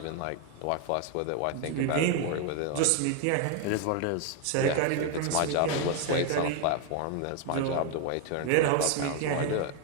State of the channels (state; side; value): different; both; correlation 0.01